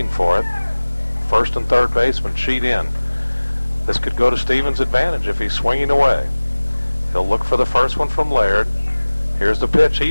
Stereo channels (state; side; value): inverted; both; correlation -1.00